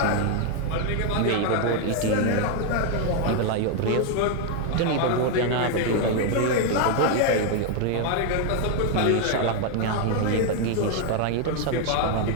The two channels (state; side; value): different; both; correlation 0.00